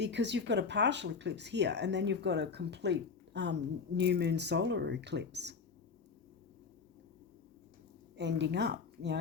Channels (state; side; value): quieter; right; 5.3 dB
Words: you've got a partial eclipse here, and then you've got a complete new moon solar eclipse ending up,